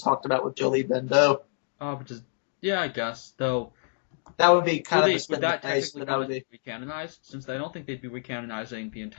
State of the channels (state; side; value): silent; right; digital silence